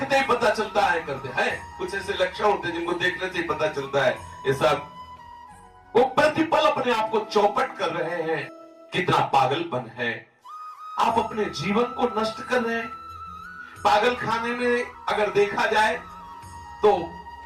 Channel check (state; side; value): identical; both; correlation 1.00